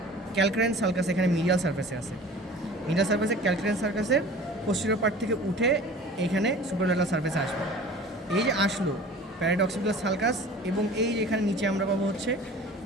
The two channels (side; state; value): both; normal; correlation 0.42